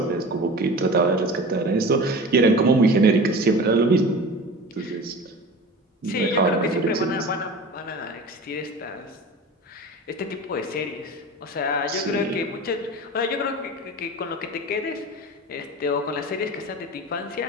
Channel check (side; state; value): both; normal; correlation 0.35